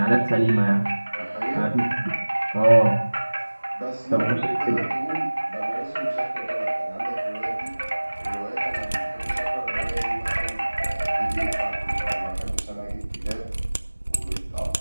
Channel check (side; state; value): both; inverted; correlation -1.00